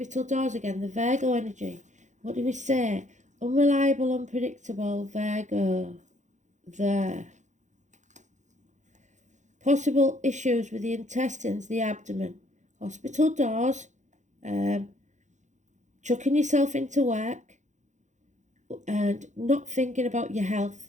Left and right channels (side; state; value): left; late; 0.35 ms